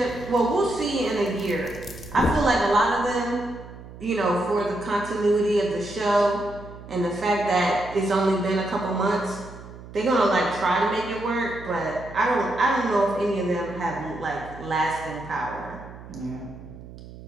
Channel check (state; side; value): noise; right; hum, 16 dB below the sound